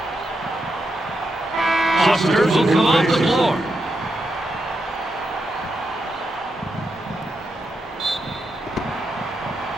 Foster will come off the floor.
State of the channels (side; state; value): both; normal; correlation 0.84